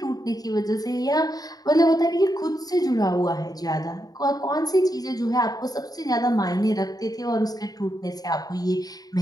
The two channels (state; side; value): late; right; 0.18 ms